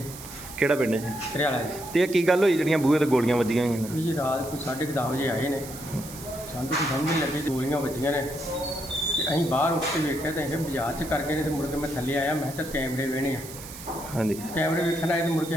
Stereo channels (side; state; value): right; noise; hiss, 14 dB below the sound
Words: ਕਿਹੜਾ ਪਿੰਡ ਹੈ? ਘਰਿਆਲਾ ਜੀ। ਤੇ ਇਹ ਕੀ ਗੱਲ ਹੋਈ ਜਿਹੜੀਆਂ ਬੂਹੇ ਤੇ ਗੋਲੀਆਂ ਵੱਜੀਆਂ ਹੋਈਆਂ ਨੇ? ਵੀ ਜੀ ਰਾਤ ਕੋਈ 10:30 ਵਜੇ ਆਏ ਨੇ, ਸਾਨੂੰ ਕੋਈ ਸਮਝ ਨਹੀਂ ਲੱਗੀ, ਗੋਲੀਆਂ ਵੱਜੀਆਂ ਨੇ। ਤੇ ਅਸੀਂ ਬਾਹਰ ਉੱਠ ਕੇ ਵੇਖਿਆ ਤਾਂ ਇਹ ਬਾਜ਼ਾਰ 'ਚ ਕਰ ਗਏ ਨੇ। ਤੇ ਮੁੜ ਕੇ ਮੈਂ ਥੱਲੇ ਆਇਆ, ਮੈਂ ਕਿਹਾ ਕੈਮਰੇ ਵੇਹਣੇ ਆ। ਹਾਂਜੀ। ਕੈਮਰੇ ਵੇਖਣ ਆਏ ਤੇ ਮੁੜ ਕੇ